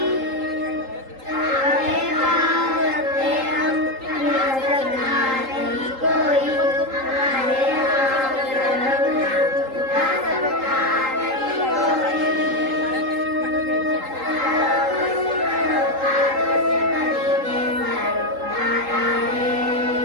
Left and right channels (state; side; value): late; left; 3.8 ms